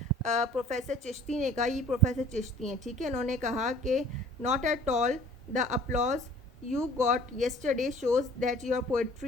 प्रोफेसर चिश्ती ने कहा, ये प्रोफेसर चिश्ती हैं, ठीक है, उन्होंने कहा कि not at all the applause you got yesterday shows that your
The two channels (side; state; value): both; normal; correlation 0.50